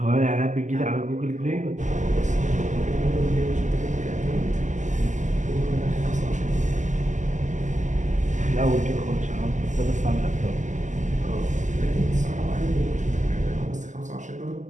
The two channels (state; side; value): late; left; 0.35 ms